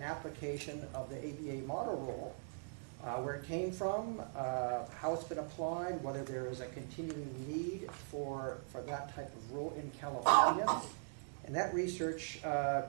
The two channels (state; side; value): silent; left; digital silence